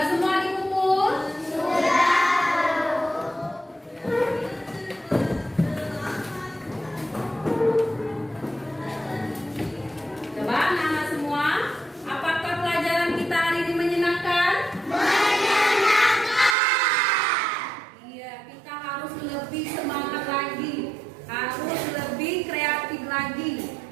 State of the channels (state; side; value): drops out; left; at 16.6 s